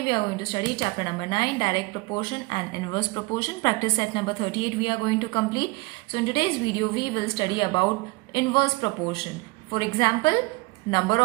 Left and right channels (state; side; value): quieter; left; 25.0 dB